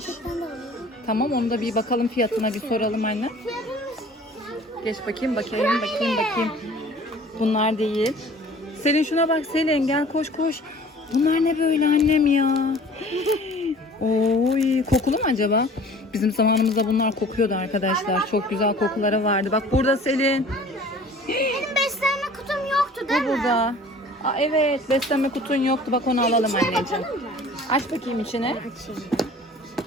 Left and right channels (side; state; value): both; normal; correlation 0.48